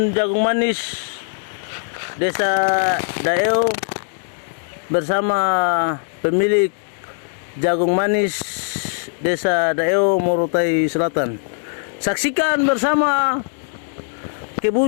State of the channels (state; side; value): silent; right; digital silence